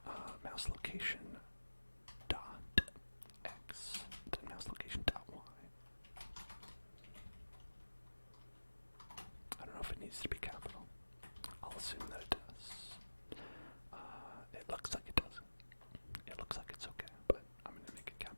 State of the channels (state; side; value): inverted; both; correlation -1.00